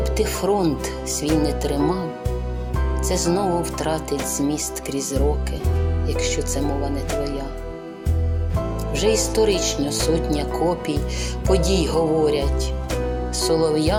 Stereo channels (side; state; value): both; identical; correlation 1.00